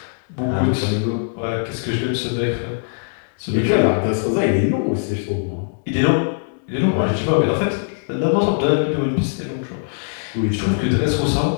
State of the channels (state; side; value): silent; right; digital silence